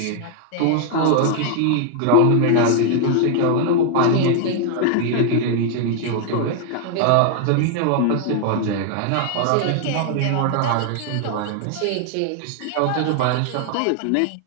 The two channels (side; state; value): both; different; correlation 0.00